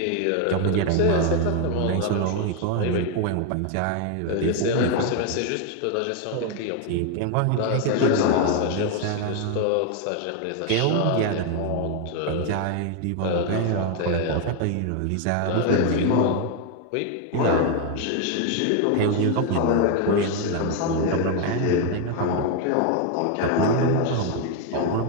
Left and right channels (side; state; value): both; different; correlation 0.01